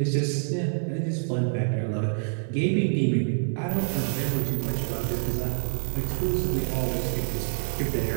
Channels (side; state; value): left; silent; digital silence